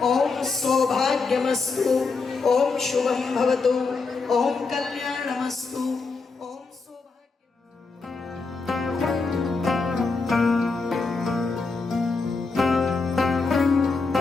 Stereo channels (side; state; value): right; quieter; 4.2 dB